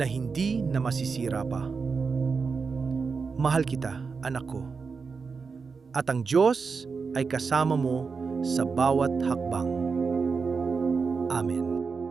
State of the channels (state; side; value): quieter; left; 5.0 dB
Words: hindi na masisira pa. Mahal kita, anak ko. At ang Diyos ay kasama mo sa bawat hakbang. Amen.